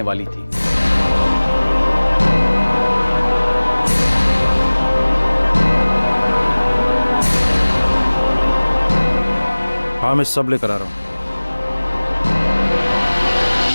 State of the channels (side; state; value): both; inverted; correlation -1.00